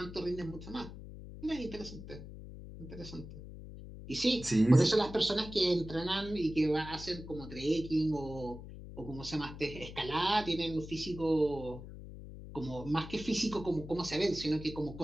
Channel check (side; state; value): left; noise; hum, 12 dB below the sound